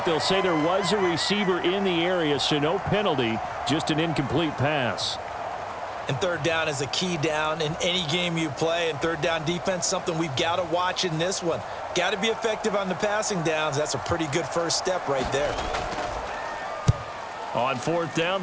they'll say there was a receiver in the area, so no penalty, just an incomplete pass. And third down is a key down in any game you play, and third down defense, something we've got to watch in this one. Got to be effective on the passing downs. That's a pretty good first step right there. On 4th down,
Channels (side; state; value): both; identical; correlation 1.00